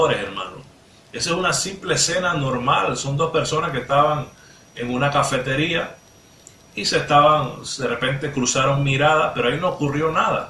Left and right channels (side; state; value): both; identical; correlation 1.00